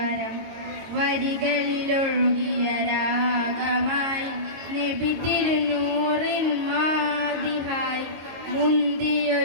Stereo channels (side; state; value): left; late; 22 ms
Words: വരികളിലൊഴുകിയ രാഗമായി നബി തിരുനൂറിൻ മാതിഹായി